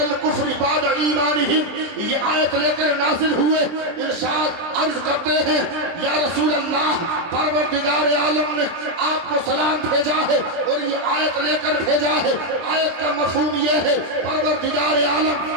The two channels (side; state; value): left; late; 24 ms